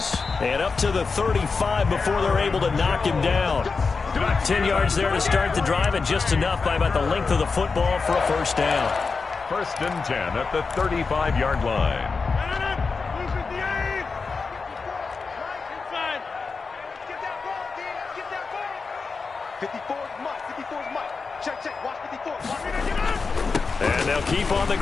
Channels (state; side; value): quieter; right; 4.6 dB